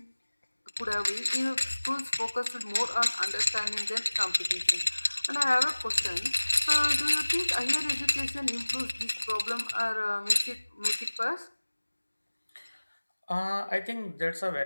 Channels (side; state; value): both; inverted; correlation -1.00